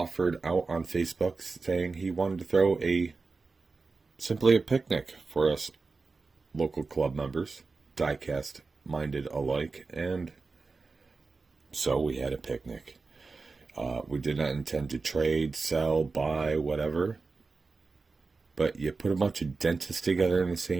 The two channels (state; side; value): quieter; left; 4.1 dB